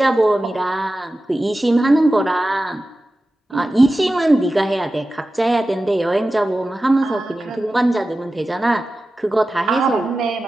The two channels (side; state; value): both; normal; correlation 0.94